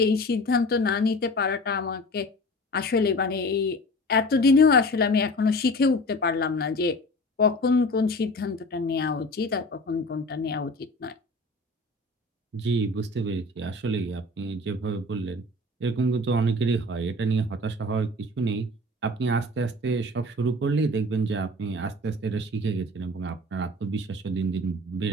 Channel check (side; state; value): both; normal; correlation 0.39